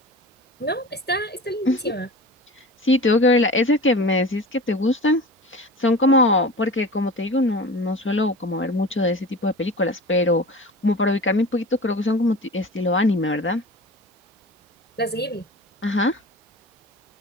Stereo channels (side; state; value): both; normal; correlation 0.35